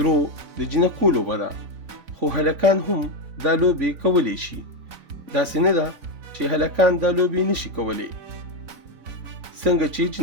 د جینکو لوبه ده، خو هلکان هم دا لوبې کولی شي. داسې نه ده چې هلکان دا لوبې نشي کولی. څنګه چې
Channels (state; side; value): late; left; 4.0 ms